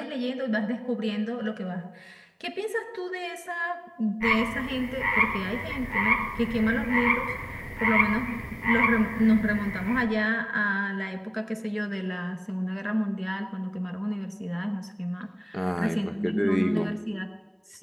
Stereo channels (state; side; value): identical; both; correlation 1.00